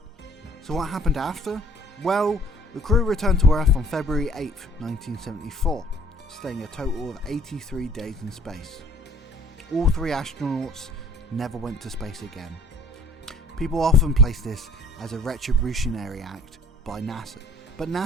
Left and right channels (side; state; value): both; normal; correlation 0.54